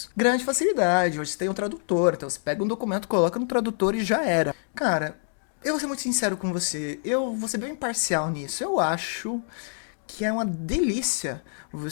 Grande facilidade, hoje você tem um tradutor, então você pega um documento, coloca no tradutor e já era. Cara, eu vou ser muito sincero com você, eu vou ser bem imparcial nisso. Eu acho que é uma delícia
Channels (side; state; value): right; silent; digital silence